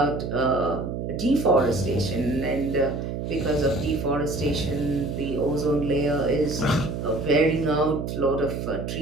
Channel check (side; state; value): right; noise; hum, 4 dB below the sound